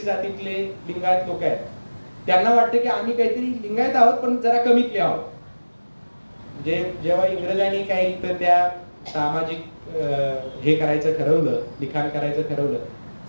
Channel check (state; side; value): inverted; both; correlation -1.00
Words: जातीतले लिंगायत लोक आहेत त्यांना वाटतं की आम्ही काहीतरी लिंगायत आहोत पण जरा कमीतले आहोत. म्हणजे जेव्हा इंग्रजांनी काही तर त्या सामाजिक हे करायचं ठरवलं, लिखाण करायचं ठरवलं,